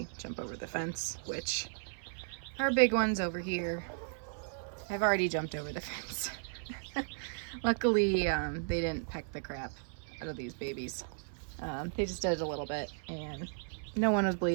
jump over the fence, which our big ones over here have already jumped over the fence. Luckily, they didn't peck the crap out of these babies. They just did it a little bit and no one was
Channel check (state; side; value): silent; left; 54 dB below the other